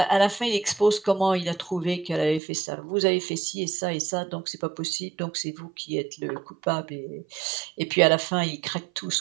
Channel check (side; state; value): left; drops out; at 2.4 s